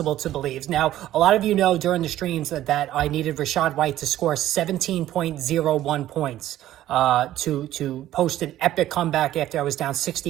to believe. Now, a lot of you know during the streams that I needed Rachaad White to score 17.01 points to post an epic comeback after I was down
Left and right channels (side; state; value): left; quieter; 13.5 dB